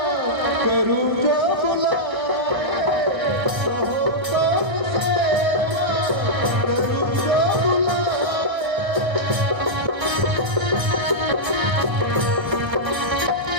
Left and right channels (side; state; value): left; late; 1.6 ms